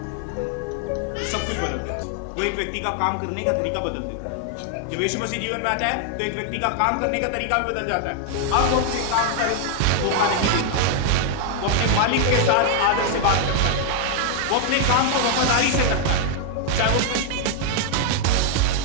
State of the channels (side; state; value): both; different; correlation 0.00